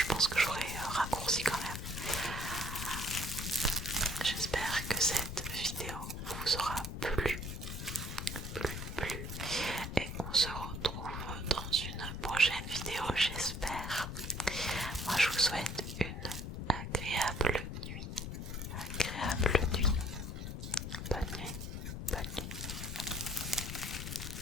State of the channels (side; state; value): left; noise; rumble, 6 dB below the sound